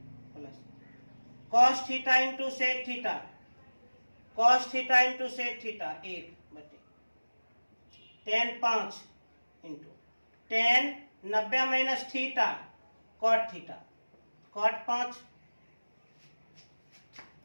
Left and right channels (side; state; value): both; inverted; correlation -1.00